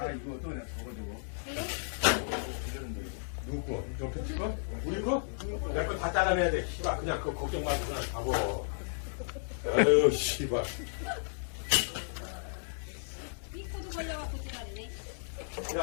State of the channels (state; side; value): silent; right; digital silence